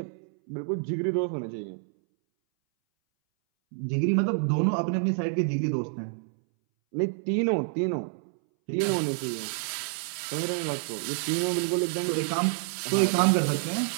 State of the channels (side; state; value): left; silent; 59 dB below the other